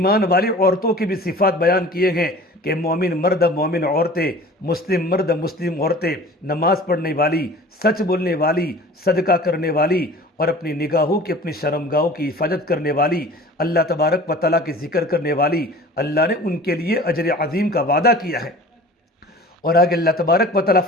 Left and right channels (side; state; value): both; normal; correlation 0.43